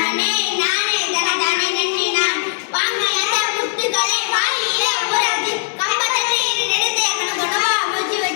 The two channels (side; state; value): right; silent; digital silence